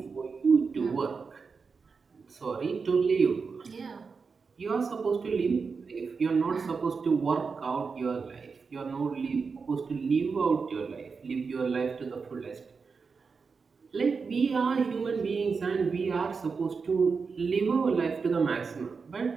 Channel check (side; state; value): left; quieter; 5.1 dB